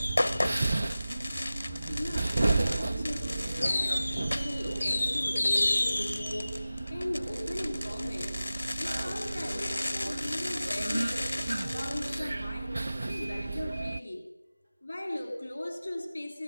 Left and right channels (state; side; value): inverted; both; correlation -0.95